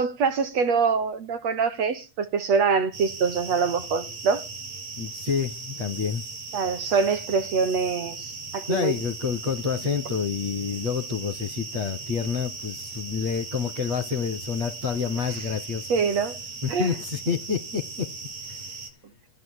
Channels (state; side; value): late; left; 8.4 ms